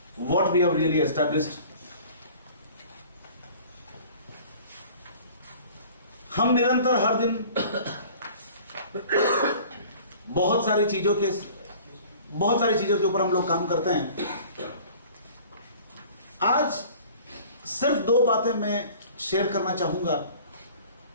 what we have really established. हम निरंतर हर दिन बहुत सारी चीजों के ऊपर हम लोग काम करते हैं. आज सिर्फ दो बातें मैं शेयर करना चाहूंगा.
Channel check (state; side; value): inverted; both; correlation -0.47